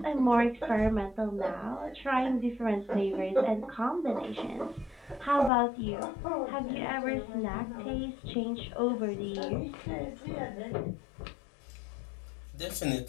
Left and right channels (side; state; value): right; drops out; at 5.5 s